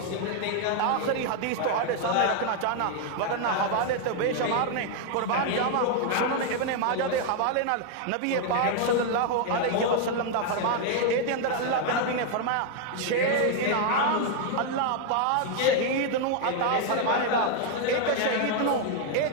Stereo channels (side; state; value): both; different; correlation 0.00